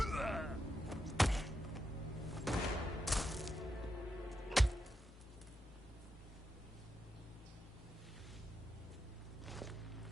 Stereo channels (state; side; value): normal; both; correlation 0.85